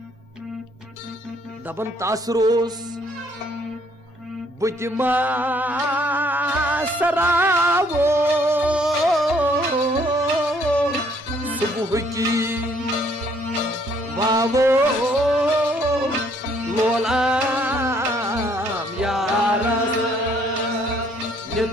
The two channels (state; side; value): normal; both; correlation 0.65